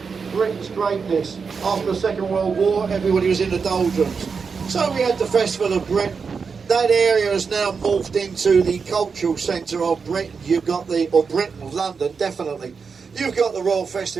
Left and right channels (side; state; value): left; quieter; 5.4 dB